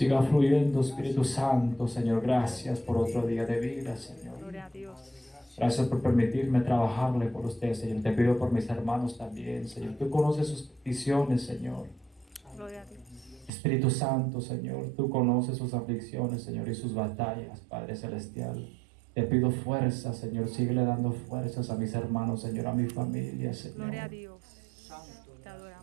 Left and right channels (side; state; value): left; drops out; at 13.5 s